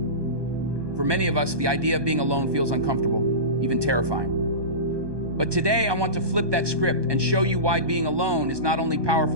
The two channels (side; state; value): left; late; 1.2 ms